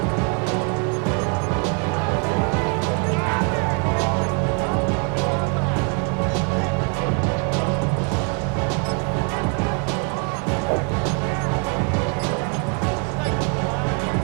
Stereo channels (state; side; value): quieter; left; 37.8 dB